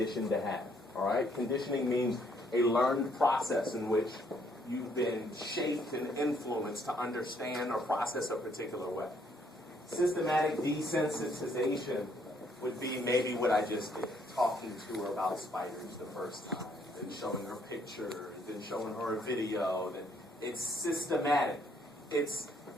to have. All right, conditioning means a learned process in which you've been shaped and influenced to understand or process a particular way. Systematic desensitization would be maybe what I just did, talking to her about spiders the first time, then showing her pictures, then showing her a video. Then it's systematic. It's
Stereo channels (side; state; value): both; normal; correlation 0.68